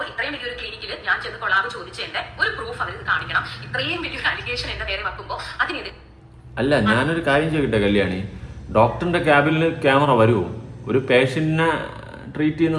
ഇത്രയും വലിയൊരു ക്ലിനിക്കിൽ ഞാൻ ചെന്ന് കൊളാബ് ചോദിച്ചതിന്റെ ഒരു പ്രൂഫ് അവർ കാണിക്കണം. ഇത്രയും വലിയൊരു അലിഗേഷൻ എന്റെ നേരെ വെക്കുമ്പോൾ അതിനെതിരെ അല്ല, ഞാനൊരു കാര്യം ചോദിക്കട്ടെ കല്യാണി, ഡോക്ടറിന്റെ ക്യാബിനിൽ ക്യാമറ വരുമോ? ഒരു പേഷ്യന്റിനെ ട്രീറ്റ്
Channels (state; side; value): identical; both; correlation 1.00